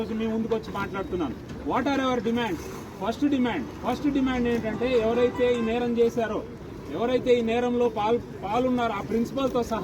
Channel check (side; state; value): both; identical; correlation 1.00